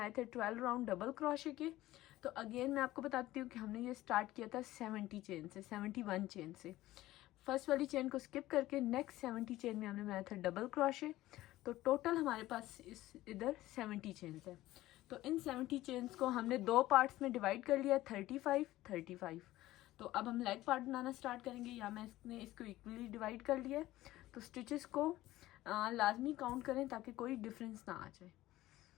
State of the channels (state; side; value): quieter; right; 16.2 dB